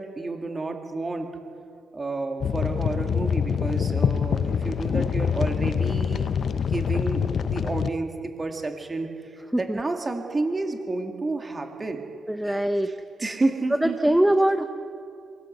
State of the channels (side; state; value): both; normal; correlation 0.85